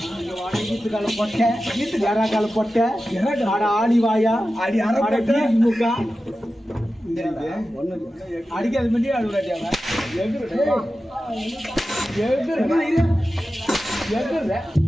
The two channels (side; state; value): both; normal; correlation 0.93